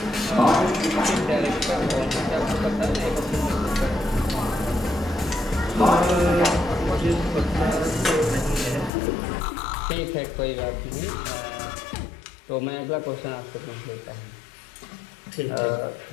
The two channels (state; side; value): drops out; right; at 8.9 s